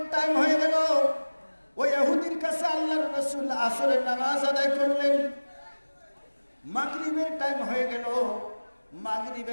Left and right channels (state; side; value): inverted; both; correlation -1.00